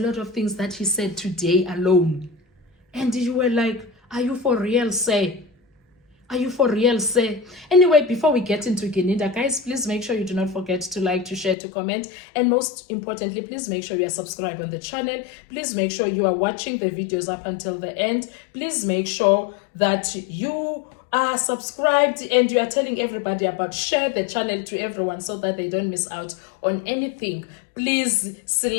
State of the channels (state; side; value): drops out; right; at 11.6 s